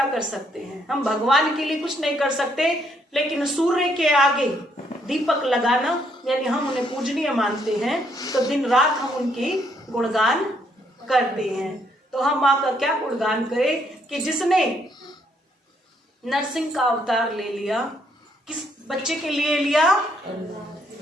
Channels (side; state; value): both; normal; correlation 0.71